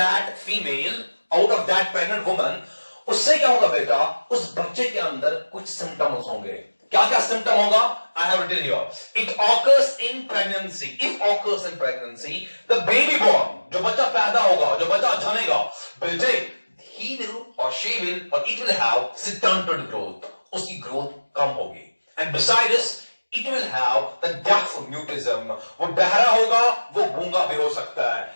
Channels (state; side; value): inverted; both; correlation -1.00